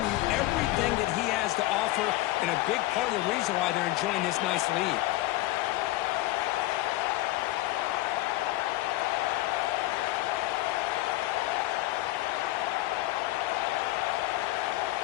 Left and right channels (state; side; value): quieter; right; 17.8 dB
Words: everything that he has to offer, and a big part of the reason why they're enjoying this nice lead.